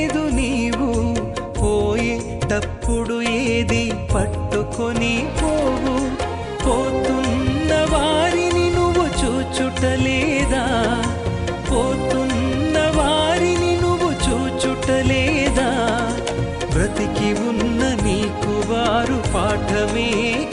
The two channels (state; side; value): identical; both; correlation 1.00